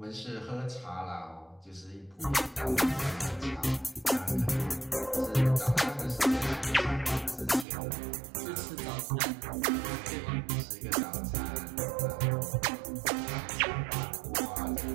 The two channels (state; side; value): drops out; left; at 7.7 s